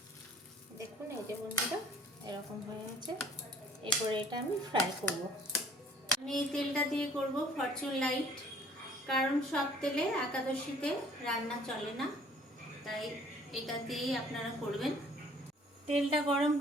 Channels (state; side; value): normal; both; correlation 0.55